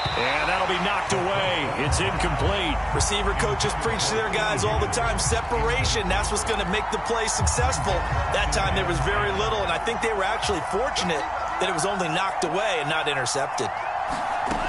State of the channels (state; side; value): identical; both; correlation 1.00